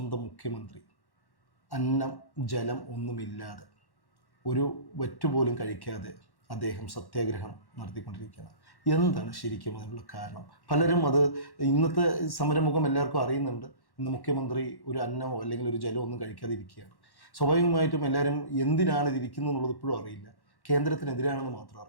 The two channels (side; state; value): right; late; 1.1 ms